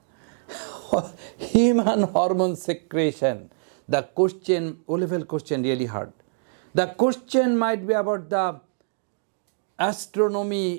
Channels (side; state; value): left; silent; digital silence